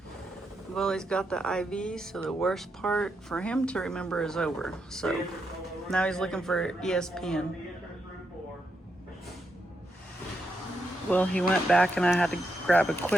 Well, he's got the IV, so the worst part for him to remember is over. So now he's looking for ESPN. Well, he went back and I had to grab a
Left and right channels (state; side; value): normal; both; correlation 0.82